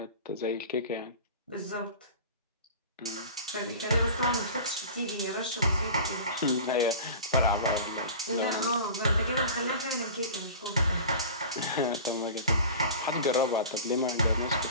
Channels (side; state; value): both; inverted; correlation -0.37